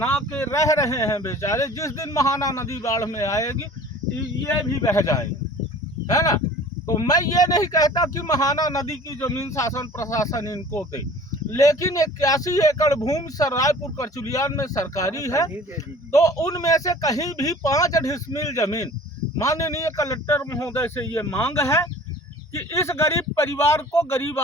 के रह रहे हैं बेचारे। जिस दिन महाना नदी बाढ़ में आएगी ये भी बह जाएंगे, है ना। तो मैं ये नहीं कहता कि महाना नदी की जमीन शासन प्रशासन इनको दे, लेकिन 81 एकड़ भूमि रायपुर करचुलियान में सरकारी है, तो उनमें से कहीं भी 5 डिसमिल जमीन, माननीय कलेक्टर महोदय से ये मांग है कि इस गरीब परिवार को, गरीब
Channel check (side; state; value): both; normal; correlation 0.46